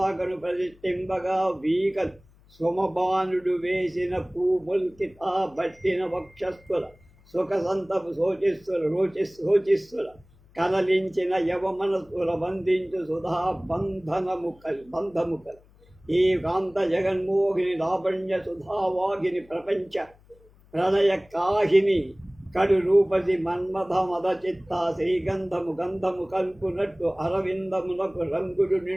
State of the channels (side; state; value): left; noise; hum, 28 dB below the sound